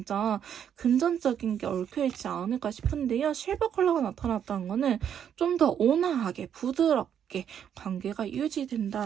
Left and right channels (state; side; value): quieter; left; 8.8 dB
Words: 금전적인 게 얽혀있지 않을까 싶은데요. 실버 컬러가 나타났다는 거는 좀 더 온화하게 부드럽게 있게 관계가